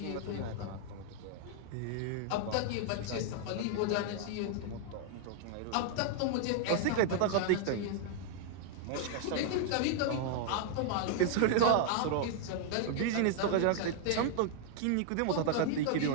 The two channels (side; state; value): both; different; correlation -0.01